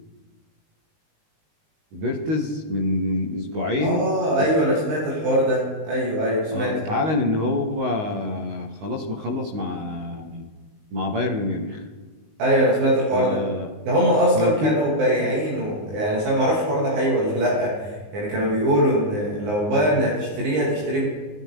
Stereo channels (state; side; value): late; left; 19 ms